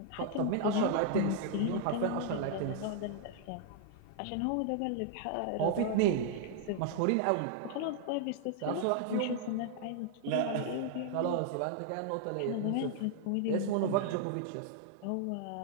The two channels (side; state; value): both; different; correlation 0.00